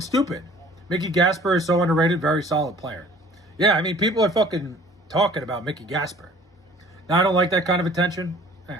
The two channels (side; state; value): both; normal; correlation 0.51